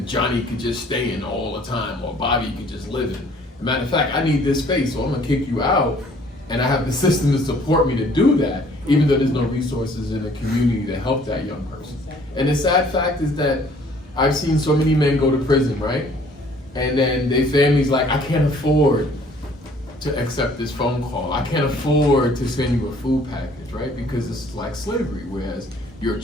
Johnny could just stay in all the time, or Bobby could just live in. As a matter of fact, I need this space, so I'm gonna kick you out, and I have the system to support me to do that, even though there's no resources in the community to help that young person. And the sad fact is that I've seen so many men go to prison, right? And then their family's like, I can't afford to accept this phone call. I can't afford to send you a food package, right? Because it's like slavery, whereas your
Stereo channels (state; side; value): normal; both; correlation 0.57